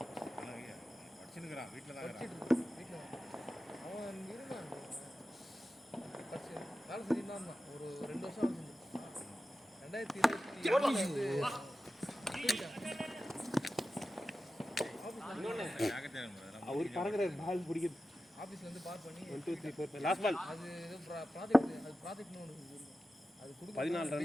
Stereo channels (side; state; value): both; normal; correlation 0.93